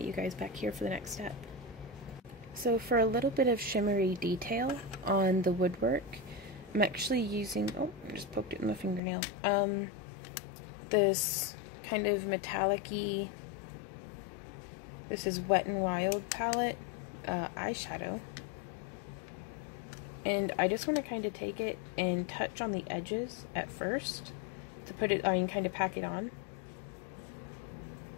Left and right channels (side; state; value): right; drops out; at 9.0 s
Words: you guys back here for the next step. So for a little bit of shimmery detail on the woodwork, I'm actually using, oh, I just poked it in my fingernail, this kind of metallic-y, this is Wet n Wild palette eyeshadow. And I just want to kind of take it and touch on the edges at first to put it, kind of pack it on.